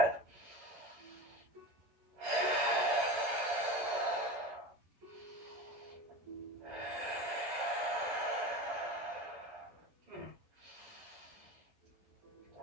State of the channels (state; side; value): late; left; 11 ms